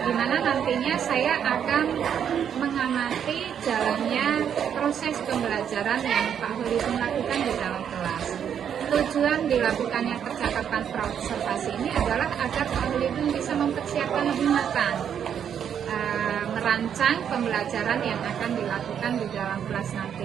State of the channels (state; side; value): quieter; left; 8.5 dB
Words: Di mana nantinya saya akan mengamati jalannya proses pembelajaran yang Pak Holidun lakukan di dalam kelas. Tujuan dilakukannya percakapan praobservasi ini adalah agar Pak Holidun bisa mempersiapkan lebih matang merancang pembelajaran yang akan dilakukan di dalam kelas nanti.